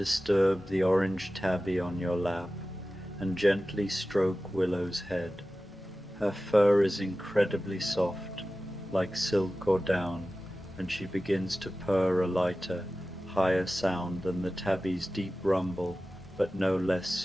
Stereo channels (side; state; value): both; normal; correlation 0.95